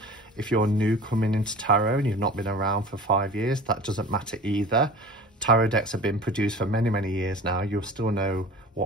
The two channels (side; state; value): both; normal; correlation 0.40